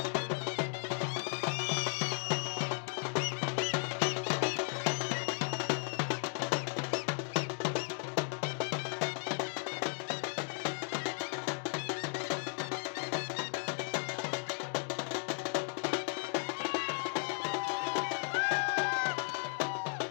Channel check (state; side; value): silent; right; 54 dB below the other